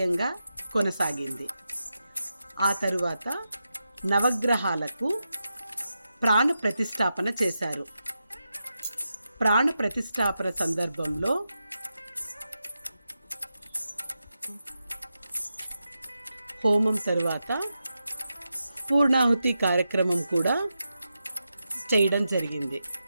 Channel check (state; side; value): inverted; both; correlation -0.89